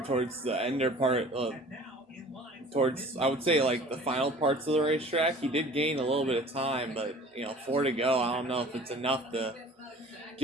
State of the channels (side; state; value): both; normal; correlation 0.46